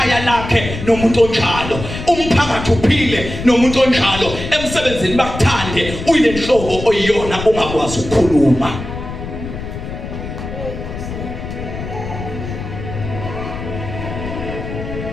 lakhe nomuntu onjalo umphakathi uphile nomuntu onjalo emsebenzini bakuthande uyile nhlobo oyiyona ungakwazi ukukhuluma.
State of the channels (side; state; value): left; noise; rumble, 8 dB below the sound